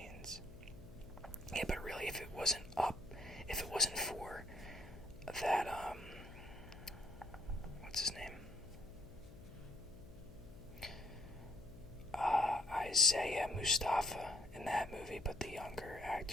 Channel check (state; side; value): noise; left; hum, 17 dB below the sound